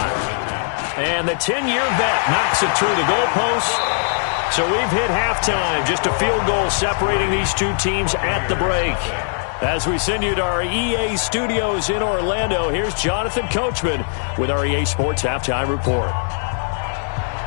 And the 10-year vet knocks it through the goalpost. So we've hit halftime, just a field goal separating these 2 teams at the break. As we send you to our EA studios in Orlando, here's Jonathan Coachman with our EA Sports Halftime Report.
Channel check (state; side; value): silent; right; digital silence